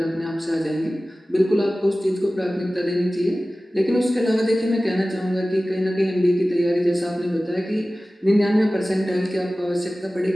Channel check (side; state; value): both; normal; correlation 0.97